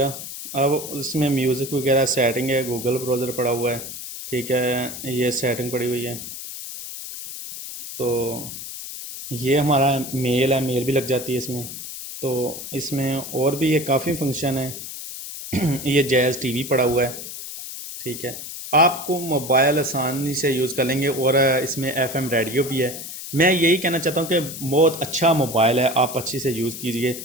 अब इसमें म्यूज़िक वगैरह सेटिंग है, गूगल ब्राउज़र पड़ा हुआ है, ठीक है। ये सेटिंग पड़ी हुई है। तो ये हमारा मेल है, मेल भी लग जाती है इसमें। तो इसमें और भी ये काफ़ी फंक्शन है। ये जैज़ टीवी पड़ा हुआ है, ठीक है। आपको मोबाइल आसानी से यूज़ कर लेंगे। और इसमें एफएम रेडियो भी है। मैं यही कहना चाहता हूँ कि बहुत अच्छा मोबाइल है, आप अच्छी से यूज़ कीजिए।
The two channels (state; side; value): noise; left; hiss, 9 dB below the sound